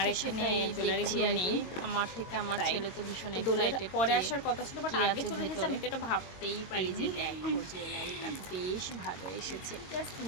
এখানে জুয়েলারিগুলো নেই। আমার থেকে আমার ছেলে তো ভীষণ দোলের এক্সাইটেড, পরে আসার কথা ছিল, বাট আগে চলে গেছে। আমি তো এটা ভাবতেই পারি যে দেখো জুয়েলারিটা বেশ ভালো এসেছে। জাস্ট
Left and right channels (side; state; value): right; late; 22 ms